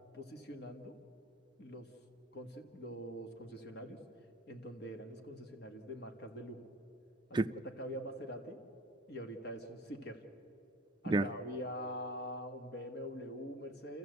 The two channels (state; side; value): normal; both; correlation 0.43